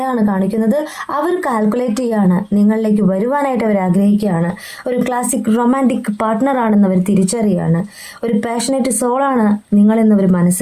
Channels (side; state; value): both; identical; correlation 1.00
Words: കാണിക്കുന്നത്. അവർ കാൽക്കുലേറ്റ് ചെയ്യാണ്, നിങ്ങളിലേക്ക് വരുവാനായിട്ട് അവർ ആഗ്രഹിക്കുകയാണ്. ഒരു ക്ലാസിക് റൊമാൻറ്റിക് പാർട്ട്ണർ ആണെന്ന് അവർ തിരിച്ചറിയാണ്. ഒരു പാഷനേറ്റ് സോളാണ് നിങ്ങളെന്നവർ